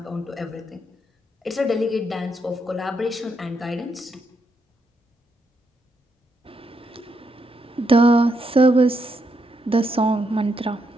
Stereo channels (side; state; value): both; normal; correlation 0.79